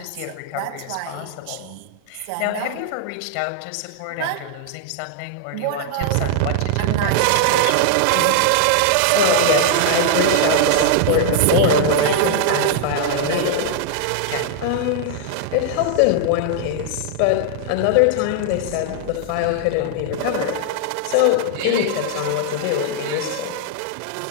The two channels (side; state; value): both; different; correlation -0.01